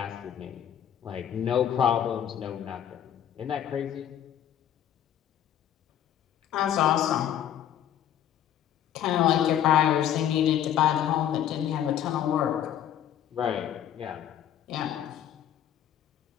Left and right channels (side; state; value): right; quieter; 10.4 dB